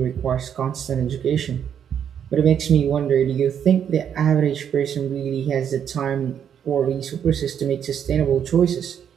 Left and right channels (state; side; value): quieter; left; 8.6 dB